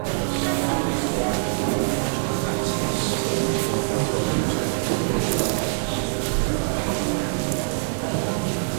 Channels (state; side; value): silent; left; digital silence